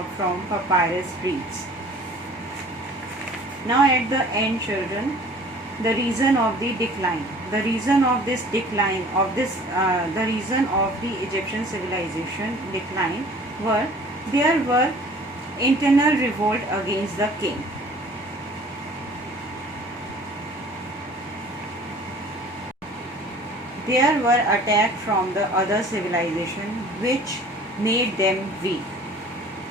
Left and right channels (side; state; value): both; normal; correlation 0.49